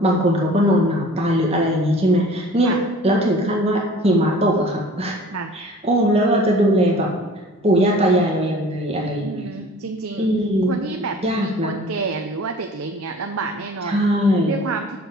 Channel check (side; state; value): both; normal; correlation 0.47